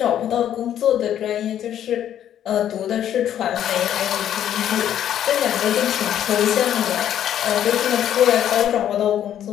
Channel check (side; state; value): right; quieter; 10.6 dB